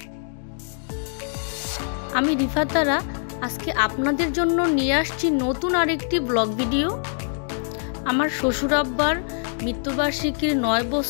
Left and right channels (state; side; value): silent; right; digital silence